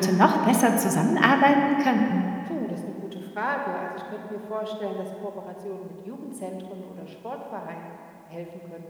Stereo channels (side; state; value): both; identical; correlation 1.00